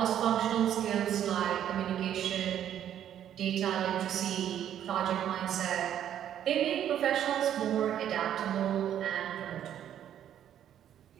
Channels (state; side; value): quieter; left; 10.4 dB